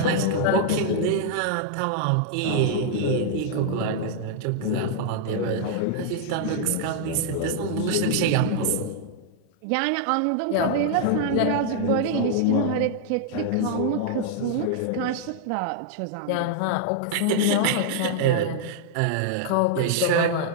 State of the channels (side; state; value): both; different; correlation -0.01